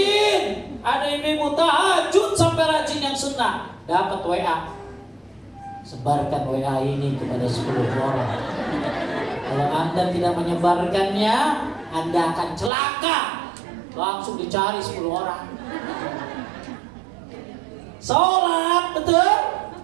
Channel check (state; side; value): drops out; left; at 12.7 s